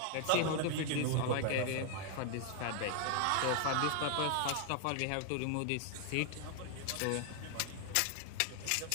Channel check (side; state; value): both; different; correlation 0.00